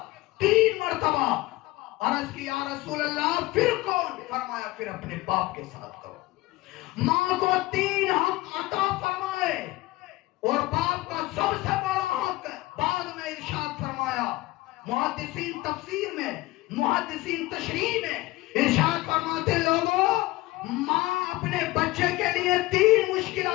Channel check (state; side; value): quieter; right; 19.6 dB